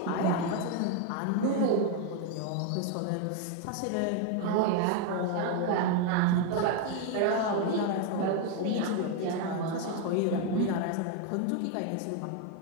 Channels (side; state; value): both; different; correlation 0.01